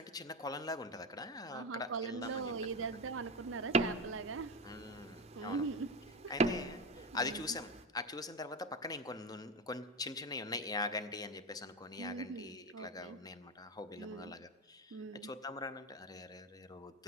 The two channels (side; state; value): both; normal; correlation 0.18